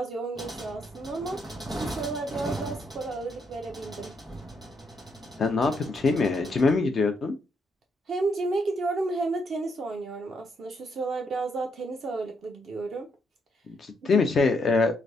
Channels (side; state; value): both; normal; correlation 0.76